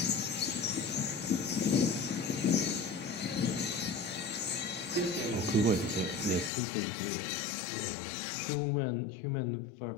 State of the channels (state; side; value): drops out; right; at 6.5 s